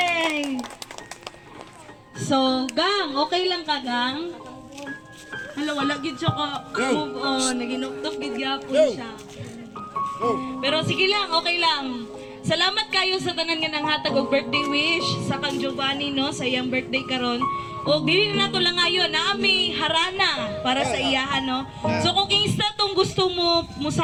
So, Gang, okay lang ka, Gang? Hala, wala gid siya ka move on. Naginuktok gid gyapon siya. Pero sige lang, okay lang. Salamat kayo sa tanan nga nanghatag og birthday wish sa kang Giovanni, no, sa iyang birthday karon. O dili na nato lang ayon na ami harana para sa iyaha, no. So kung kinsta tong gusto mo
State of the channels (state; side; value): identical; both; correlation 1.00